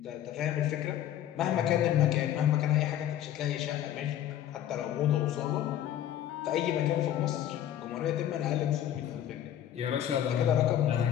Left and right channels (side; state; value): right; quieter; 11.3 dB